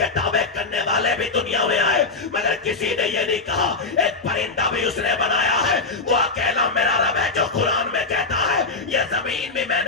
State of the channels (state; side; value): quieter; right; 3.8 dB